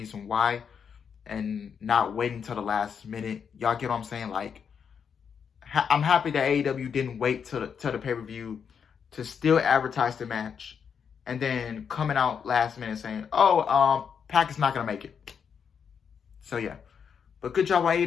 why and not waiting till the last minute. Y'all get what I'm saying? Like, I'm happy that AEW didn't wait till the pay-per-view to still advertise the match and then coming out last minute saying, oh, Pac is not going to make it. So, yeah. But good job on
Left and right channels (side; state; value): right; quieter; 7.0 dB